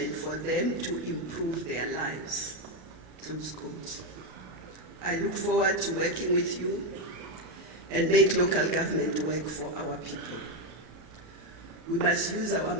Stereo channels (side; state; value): left; late; 33 ms